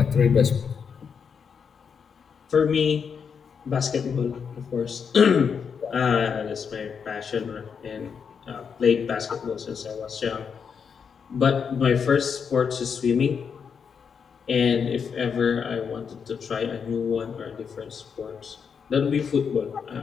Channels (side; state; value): right; quieter; 6.5 dB